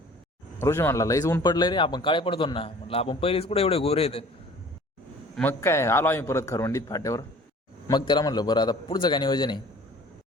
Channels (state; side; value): normal; both; correlation 0.49